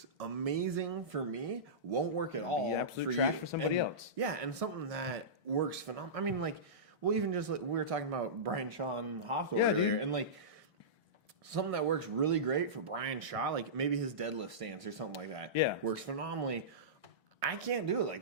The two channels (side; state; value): both; normal; correlation -0.19